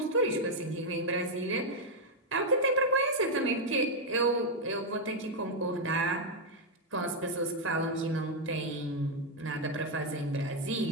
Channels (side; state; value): both; normal; correlation 0.00